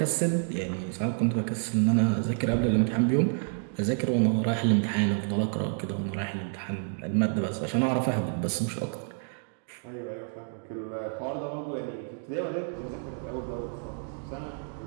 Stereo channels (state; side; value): silent; left; 59 dB below the other